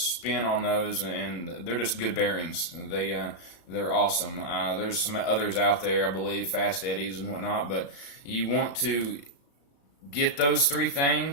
on those, and they're just good bearings. They're awesome. There's some others out there, I believe, Fast Eddies and whatnot. But you want to get those 4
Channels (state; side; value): late; right; 35 ms